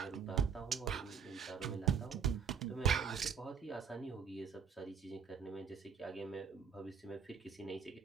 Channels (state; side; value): quieter; left; 6.9 dB